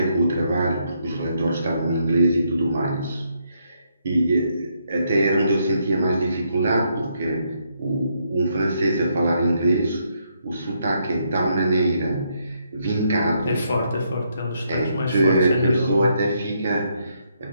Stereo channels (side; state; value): both; inverted; correlation -0.75